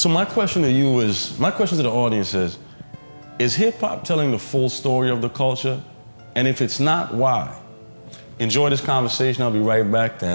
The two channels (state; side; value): inverted; both; correlation -1.00